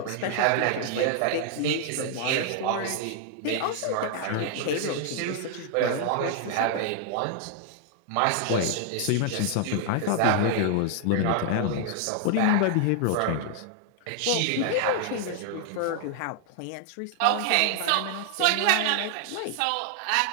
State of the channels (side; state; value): both; different; correlation 0.00